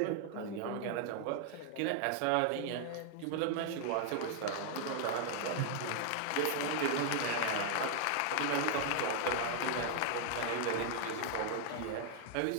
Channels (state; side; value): different; both; correlation 0.00